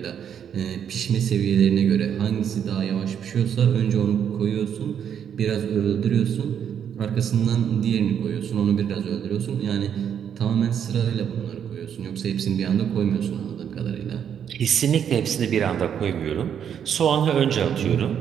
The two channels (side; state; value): left; quieter; 8.5 dB